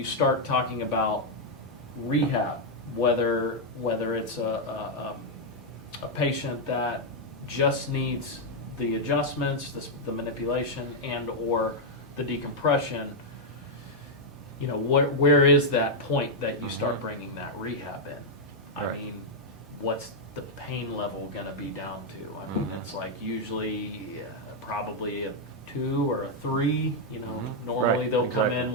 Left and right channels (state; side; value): normal; both; correlation -0.02